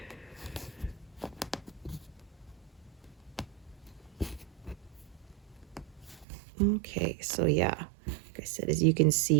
Okay, so yeah, like I said, as you can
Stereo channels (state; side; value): drops out; left; at 6.2 s